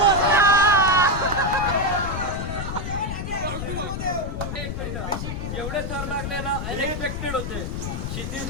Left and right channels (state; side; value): noise; left; rumble, 4 dB below the sound